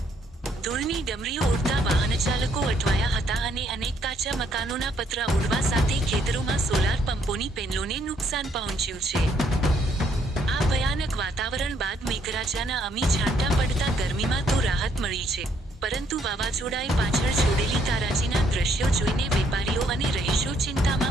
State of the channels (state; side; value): normal; both; correlation 0.70